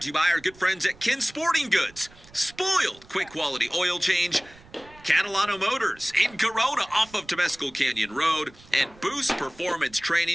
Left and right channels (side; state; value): right; noise; rumble, 24 dB below the sound